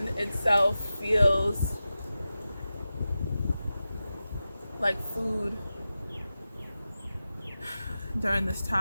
itself feels like food during this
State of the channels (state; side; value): inverted; both; correlation -0.93